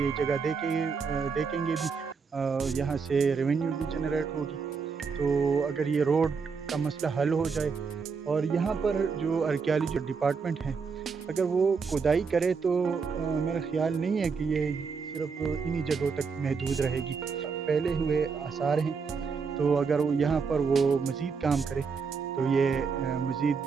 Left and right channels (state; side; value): quieter; left; 5.4 dB